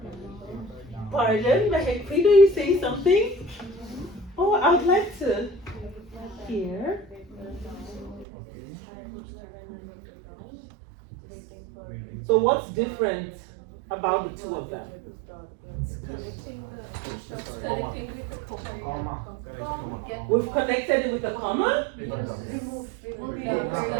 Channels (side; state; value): left; drops out; at 8.2 s